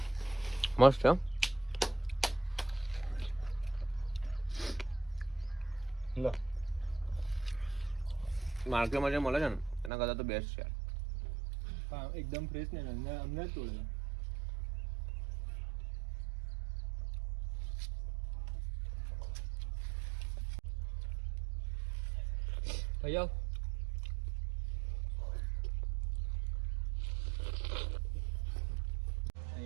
મસ્ત છે. લો માર્કેટમાં જે મળે છે ને એના કરતાં તો બેસ્ટ છે યાર. હા એકદમ ફ્રેશ ને અમને જ તોડે. ભૈયા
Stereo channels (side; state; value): left; drops out; at 9.9 s